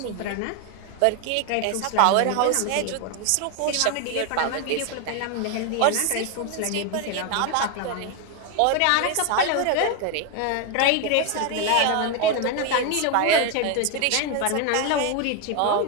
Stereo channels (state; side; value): different; both; correlation 0.01